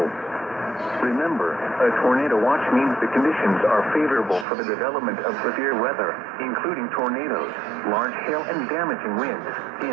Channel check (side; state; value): left; drops out; at 4.5 s